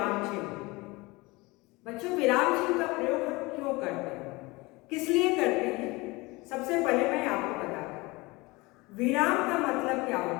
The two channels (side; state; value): right; quieter; 23.4 dB